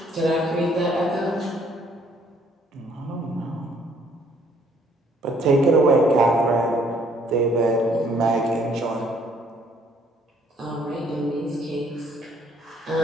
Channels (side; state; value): both; normal; correlation 0.63